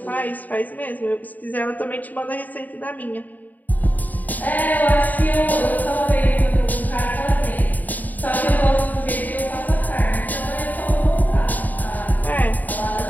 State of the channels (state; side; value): late; right; 0.082 ms